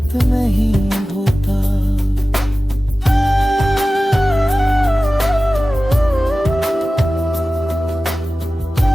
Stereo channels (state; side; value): normal; both; correlation 0.96